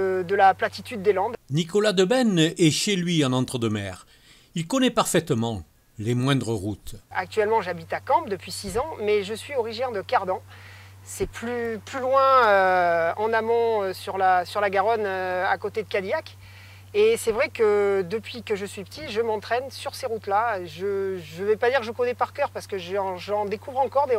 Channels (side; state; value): both; identical; correlation 1.00